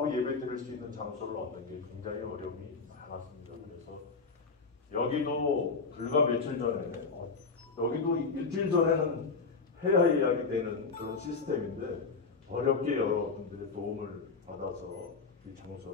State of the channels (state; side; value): quieter; right; 4.5 dB